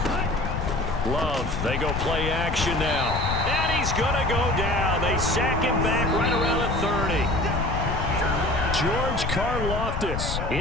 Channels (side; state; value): left; noise; rumble, 3 dB below the sound